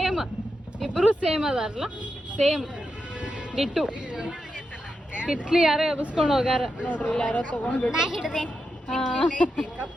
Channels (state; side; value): normal; both; correlation 0.87